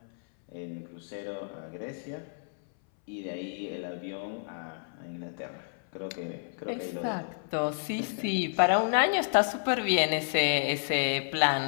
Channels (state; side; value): silent; right; 57 dB below the other